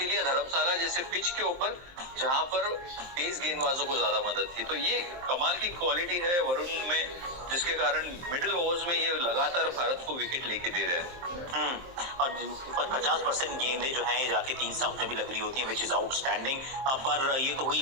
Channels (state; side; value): late; left; 23 ms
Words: लिया धर्मशाला जैसे पिच के ऊपर, जहां पर तेज गेंदबाजों को ज्यादा मदद थी। तो ये कमाल की क्वालिटी है वरुण में, जिसके कारण मिडिल ओवर्स में ये लगातार भारत को विकेट लेके दे रहे हैं। और 50% गेंदें जो हैं जाके 3 स्टंप में भी लग रही होती हैं, विच इज आउटस्टैंडिंग। पर ये तो हुई